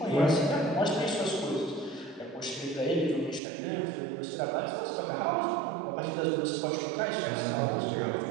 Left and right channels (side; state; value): left; drops out; at 3.4 s